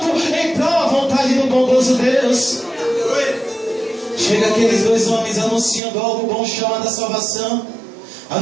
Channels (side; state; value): left; drops out; at 5.8 s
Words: em prol da vontade do bondoso Deus. Chega aqueles dois homens anunciando algo bom chamado a salvação,